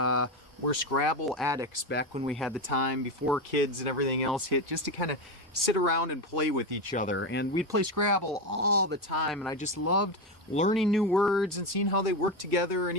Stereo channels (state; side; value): normal; both; correlation 0.14